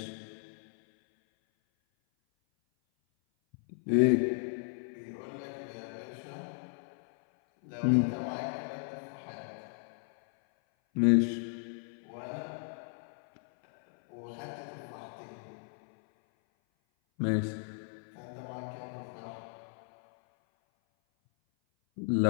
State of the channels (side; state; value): right; silent; 55 dB below the other